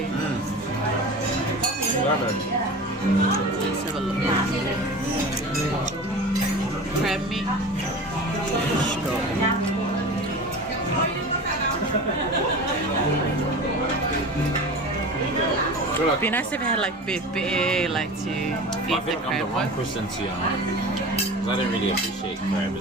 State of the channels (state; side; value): normal; both; correlation 0.34